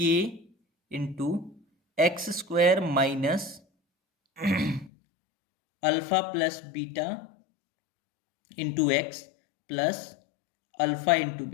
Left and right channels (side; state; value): right; drops out; at 4.9 s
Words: into x² minus alpha plus beta into x plus alpha into